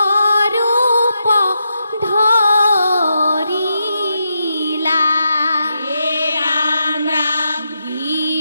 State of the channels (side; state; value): both; inverted; correlation -0.84